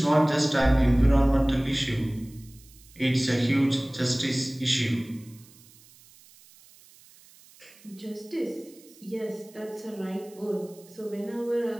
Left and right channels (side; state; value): right; noise; hiss, 25 dB below the sound